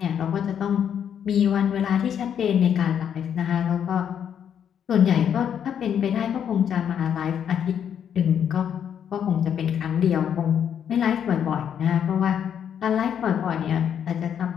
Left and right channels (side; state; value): right; quieter; 8.6 dB